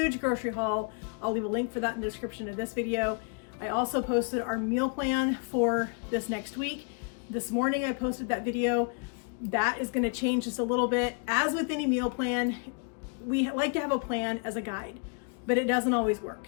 grocery haul. I'll leave a link for that in the description of this video. I also posted our meal plan for this next week. This morning I posted that video. That is going to change just a little bit. As with any meal plan, we like to have a plan as a guide, but it doesn't always work.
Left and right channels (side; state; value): right; quieter; 38.6 dB